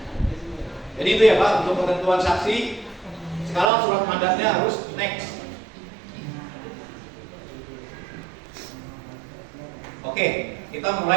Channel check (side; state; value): left; drops out; at 3.7 s